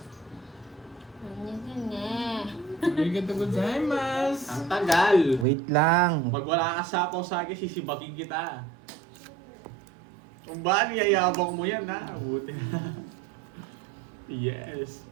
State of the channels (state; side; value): drops out; left; at 5.5 s